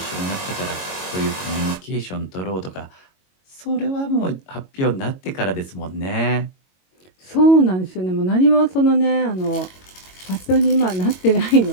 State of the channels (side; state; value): right; late; 22 ms